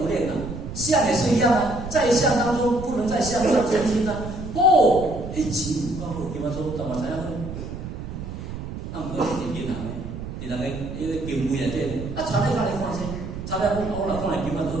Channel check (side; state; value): right; noise; rumble, 8 dB below the sound